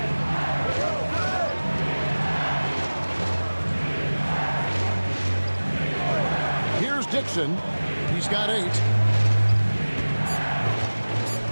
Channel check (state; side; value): inverted; both; correlation -1.00